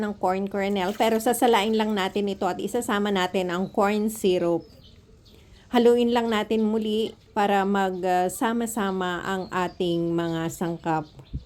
ng corn kernel pero sasalain lang natin ito at isasama natin ang corn syrup. Haluin lang natin muli para magsama-sama ang ating mga sangkap.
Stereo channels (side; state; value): both; identical; correlation 1.00